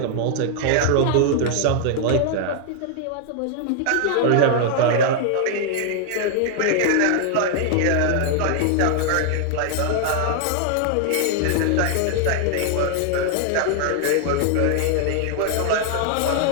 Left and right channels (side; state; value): both; different; correlation 0.00